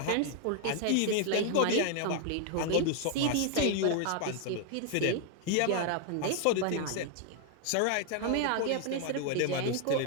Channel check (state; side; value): different; both; correlation 0.00